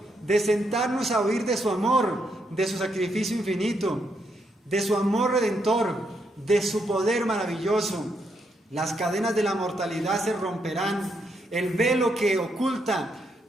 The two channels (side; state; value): both; normal; correlation 0.78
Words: de sentarnos a oír de su amor, de su sacrificio infinito, de su amor redentor, de su poder maravilloso. Las cadenas de la mortalidad se romperán, el velo que oculta